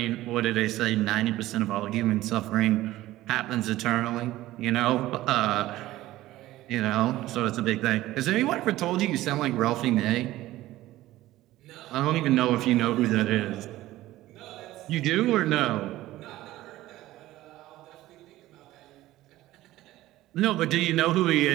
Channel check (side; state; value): left; quieter; 16.0 dB